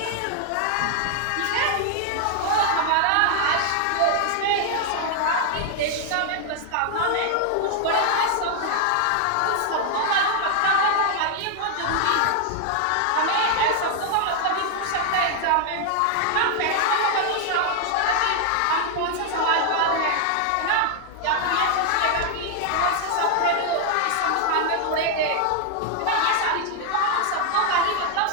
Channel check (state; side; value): different; both; correlation 0.00